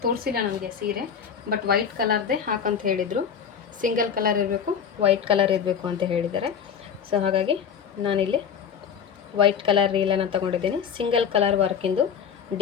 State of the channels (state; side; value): quieter; right; 7.3 dB